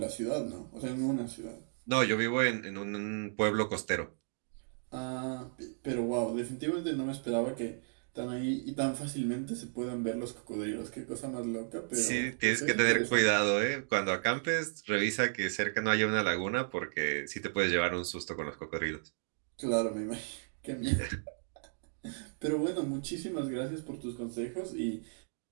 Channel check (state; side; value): silent; left; digital silence